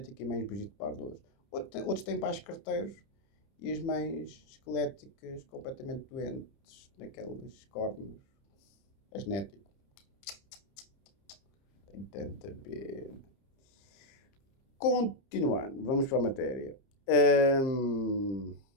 e mães Brigitte Bardot. Outros têm pais carteiros e as mães esqueléticas completamente doentes, naqueles cornos. É genético. Tem tanta pena. Continuando, vamos para a matéria.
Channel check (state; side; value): late; right; 30 ms